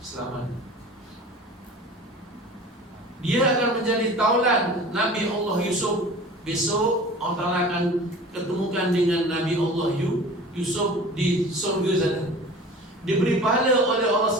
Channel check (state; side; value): normal; both; correlation 0.40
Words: Dia akan menjadi taulan Nabi Allah Yusuf. Besok Allah Ta'ala akan ketemukan dengan Nabi Allah Yusuf di surga sana. Diberi pahala oleh Allah